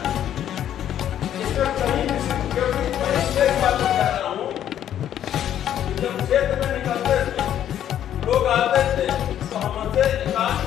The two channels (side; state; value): right; quieter; 10.6 dB